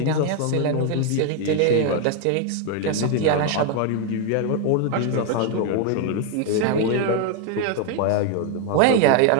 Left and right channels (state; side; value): different; both; correlation 0.01